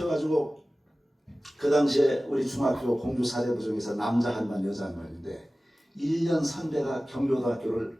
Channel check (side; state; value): both; normal; correlation 0.97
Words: 그 당시에 우리 중학교 공주 사대부 중에서 남자 한 반 여자 한 반인데 1년 선배가 경기고등학교를